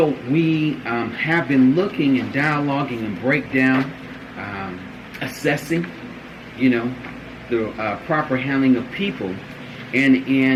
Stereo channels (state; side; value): identical; both; correlation 1.00